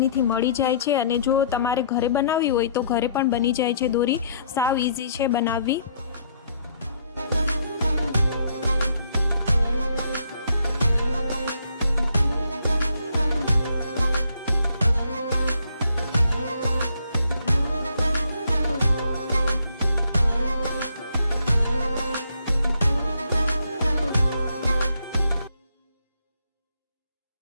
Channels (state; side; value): inverted; both; correlation -0.67